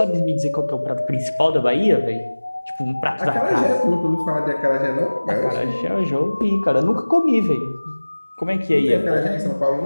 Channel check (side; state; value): both; inverted; correlation -1.00